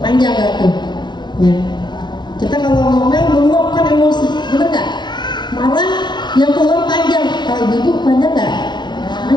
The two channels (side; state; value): right; late; 0.21 ms